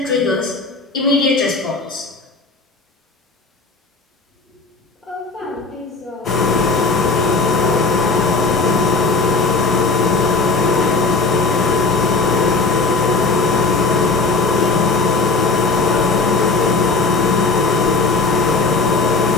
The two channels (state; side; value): quieter; right; 3.9 dB